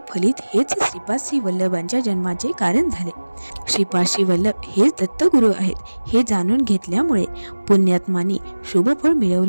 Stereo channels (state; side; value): inverted; both; correlation -1.00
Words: फलित हेच श्रीपाद श्री वल्लभांच्या जन्माचे कारण झाले. श्रीपाद श्री वल्लभ हेच दत्तगुरू आहेत हे जाणून घेतल्यामुळे पुण्यात्मांनी शुभफळ